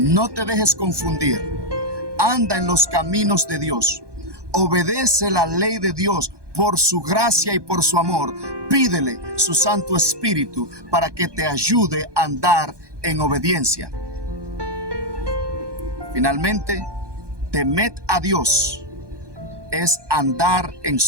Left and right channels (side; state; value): left; late; 1.2 ms